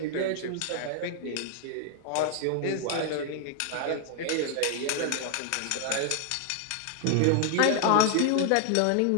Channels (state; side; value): different; both; correlation 0.00